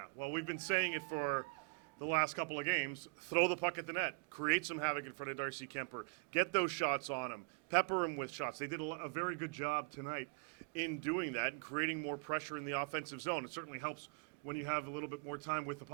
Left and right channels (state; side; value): quieter; left; 36.6 dB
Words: well, we've been saying it for the last couple of games. Throw the puck at the net. Create some havoc in front of Darcy Kuemper. Get those shots on him. Pepper him with shots. They did a very good job tonight in doing that and creating more pressure in the offensive zone. It certainly helps when you have a little bit more time with the